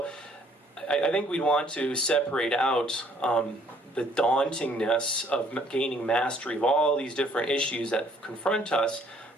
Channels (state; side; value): normal; both; correlation 0.62